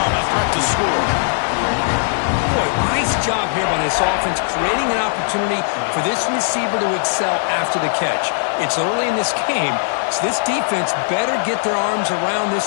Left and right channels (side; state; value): right; silent; digital silence